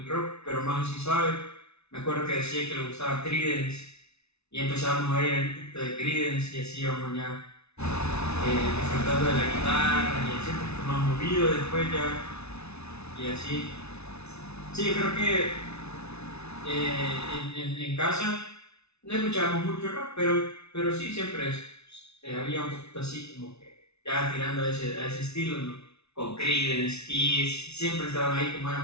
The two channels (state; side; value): late; right; 0.80 ms